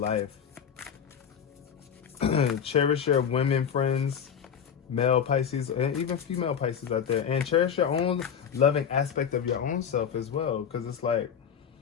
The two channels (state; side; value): quieter; right; 7.8 dB